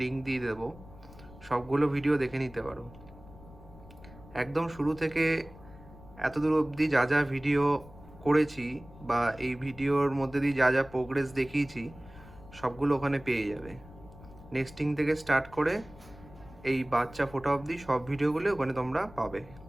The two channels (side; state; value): left; noise; rumble, 20 dB below the sound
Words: লিঙ্ক দিয়ে দেবো, সবগুলো ভিডিও দেখে নিতে পারো। একদম শুরু থেকে এতদূর অবধি যা যা ভিডিও করেছি বা এই ভিডিওর মধ্যে দিয়ে যা যা প্রোগ্রেস দেখিয়েছি সবগুলো ওখানে পেয়ে যাবে। নেক্সটিং থেকে স্টার্ট করে এই বাচ্চা ফোটা অবধি সব ভিডিওগুলো ওখানে তোমরা পাবে।